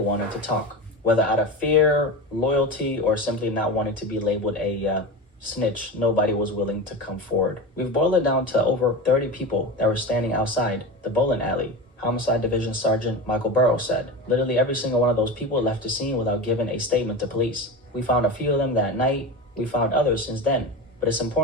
to talk, whether out of fear, loyalty, or simply not wanting to be labeled a snitch. Nobody was willing to come forward. We've boiled it down to over 30 people that were standing outside the bowling alley. Homicide Division Sergeant Michael Burrows said, literally every single one of those people left the scene without giving a statement to police. We found a few of them that night. We found others since then. But it's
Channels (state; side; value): normal; both; correlation 0.24